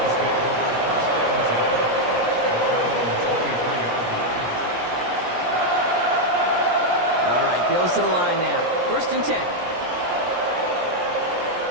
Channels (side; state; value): left; late; 17 ms